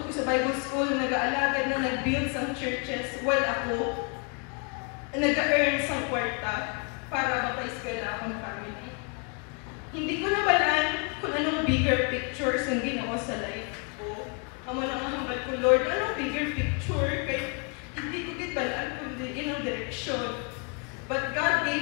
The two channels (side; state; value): right; quieter; 35.3 dB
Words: ko sa Bible school, nag-aalagad na nag-build sang churches while ako nag-earn sang kwarta para mapaiskala akong family. Hindi ko nabalaan kung anong bigger pictures ang Ginoo sa life ko. Amo na nga hambal ko, Lord, anong bigger picture? Kaya hindi ko balaan kundi inang direksyon. But God